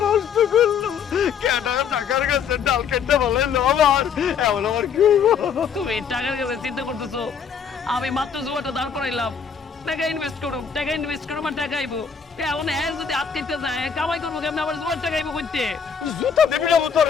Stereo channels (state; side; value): quieter; right; 6.8 dB